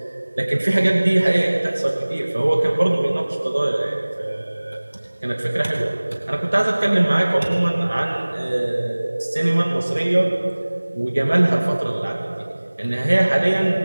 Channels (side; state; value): both; inverted; correlation -1.00